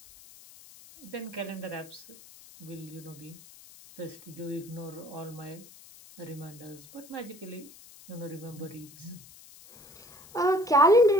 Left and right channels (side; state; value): left; noise; hiss, 21 dB below the sound